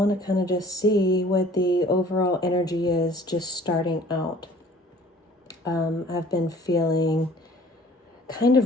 to kind of just see what the overall energy is just starting out. I've been feeling kind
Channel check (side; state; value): both; normal; correlation 0.51